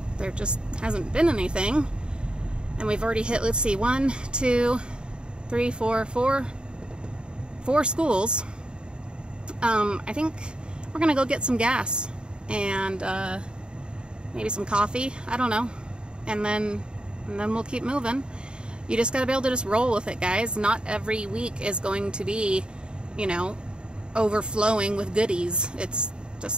there just hasn't been anything, and we've already hit, let's see, 1, 2, 3, 4 schools. I think we're gonna go get some gas and maybe some coffee, I don't know, and then we'll keep moving. You just gotta be able to just roll with it, guys. Not every week is going to be, you know, overflowing with goodies. It's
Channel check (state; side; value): late; left; 0.051 ms